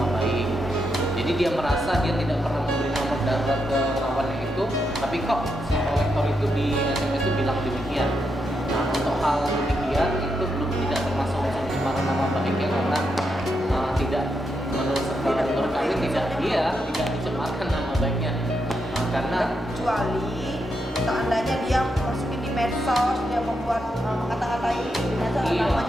baik. Jadi dia merasa dia tidak pernah memberi nomor darurat ke lawannya itu, tapi kok si kolektor itu di SMS itu bilang demikian. Nah untuk hal demikian itu belum tidak termasuk unsur pencemaran nama baiknya, karena tidak menurut kami tidak dicemarkan nama baiknya, karena kecuali seandainya dia masukin di medsos, dia membuat kata-katai di medsos, Iya.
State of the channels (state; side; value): normal; both; correlation 0.83